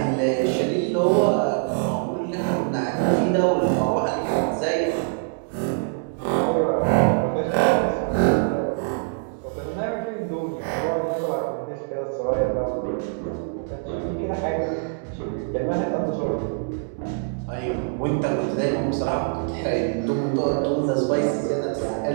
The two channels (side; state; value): left; silent; digital silence